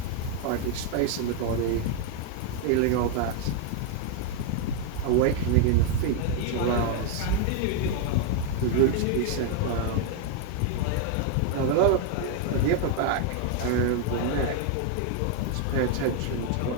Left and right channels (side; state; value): both; different; correlation 0.00